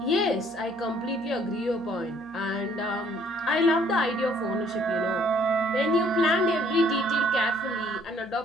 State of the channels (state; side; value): noise; left; hum, 27 dB below the sound